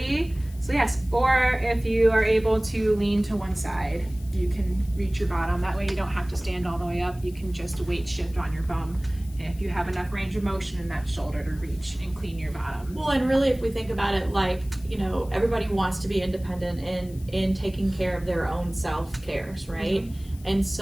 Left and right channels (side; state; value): left; noise; hiss, 23 dB below the sound